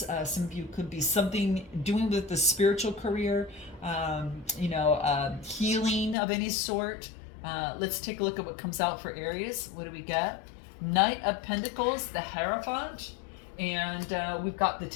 Some of you could be something doing with the spiritual career, healing of any sort. Let's take a look at what comes out for Aries. What do we get? Knight of Pentacles, the Hierophant, and we've got the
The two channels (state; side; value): drops out; right; at 6.2 s